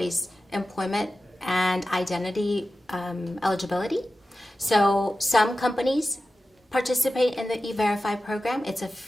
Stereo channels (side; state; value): both; normal; correlation 0.94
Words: employment and identity eligibility. So some companies participate in the E-Verify program. It's a